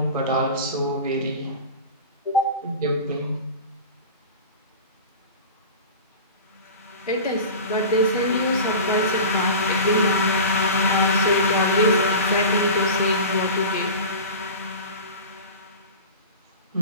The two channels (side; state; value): both; inverted; correlation -0.32